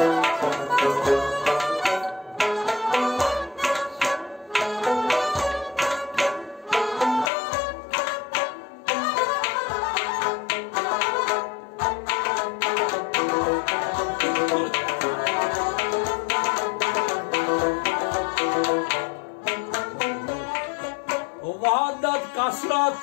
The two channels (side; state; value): right; drops out; at 7.3 s